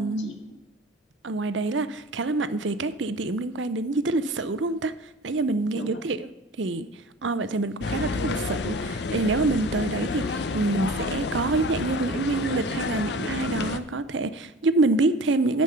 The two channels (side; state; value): both; normal; correlation 0.40